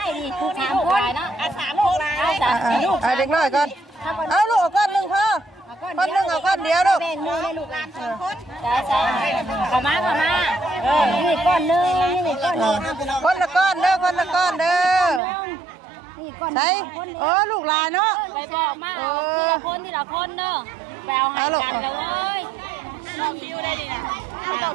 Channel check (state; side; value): drops out; left; at 15.2 s